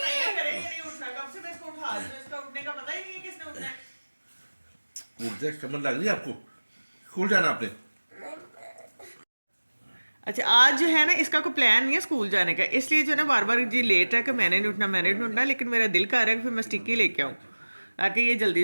करे, ये नहीं उठना। कब से मैं इसको उठा रही हूँ, इसका उठने का पता ही नहीं है किसने उठना है। उठ जाए, समझ लग रही है आपको? स्कूल जाना आपने? अच्छा, आज जो है ना इसका कोई प्लान नहीं है स्कूल जाने का, इसलिए जो है ना बार बार जी लेट है कि मैंने नहीं उठना। लेकिन मेरा दिल कर रहा है कि फिर मैं स्टिक्की लेके आऊँ ताकि ये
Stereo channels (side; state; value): both; inverted; correlation -1.00